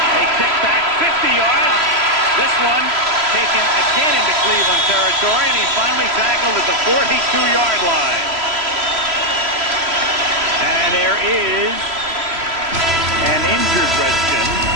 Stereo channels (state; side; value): late; left; 3.0 ms